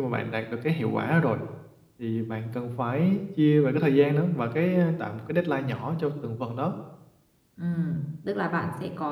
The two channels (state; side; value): identical; both; correlation 1.00